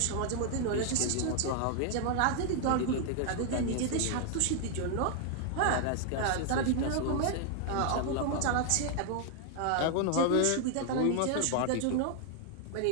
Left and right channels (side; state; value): both; different; correlation 0.00